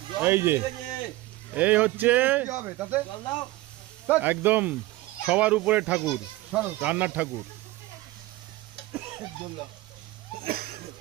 এই যে এই হচ্ছে একদম সবার উপরে ঠাকুর, রান্নার ঠাকুর।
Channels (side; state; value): left; quieter; 18.3 dB